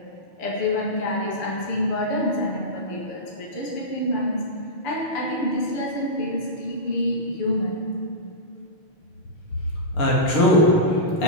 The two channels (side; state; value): right; late; 6.7 ms